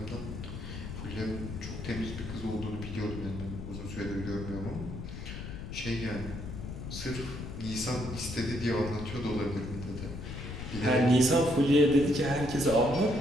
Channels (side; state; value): left; noise; rumble, 8 dB below the sound